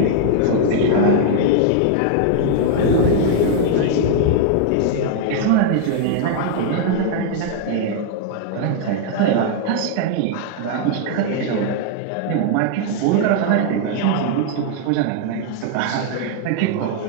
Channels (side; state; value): both; different; correlation 0.00